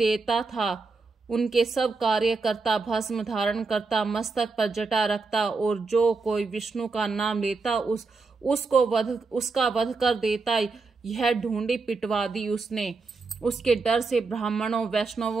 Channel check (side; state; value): left; quieter; 4.1 dB